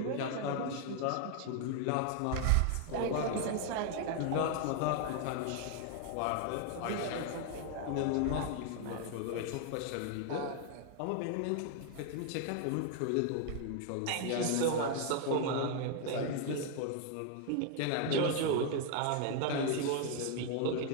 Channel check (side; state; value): both; different; correlation 0.00